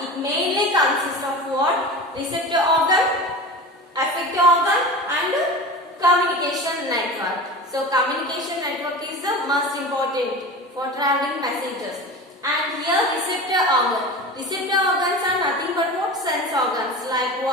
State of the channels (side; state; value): both; normal; correlation 0.32